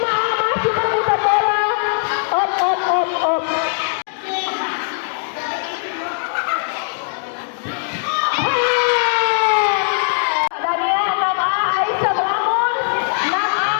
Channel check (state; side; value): silent; right; digital silence